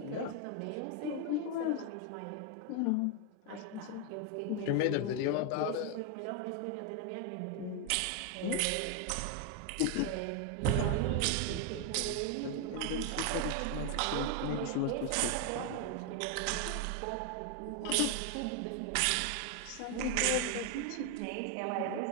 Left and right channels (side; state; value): both; different; correlation 0.01